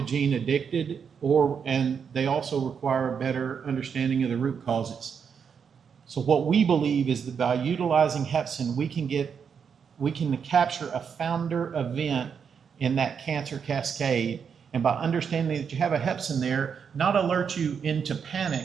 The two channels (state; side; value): quieter; left; 6.8 dB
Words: addicted, and they also require a better understanding of the root causes. So what we believe is that by utilizing Hepsin, we can capture a founder event in that cancer cascade, and by understanding that you have a Hepsin there, not alert you into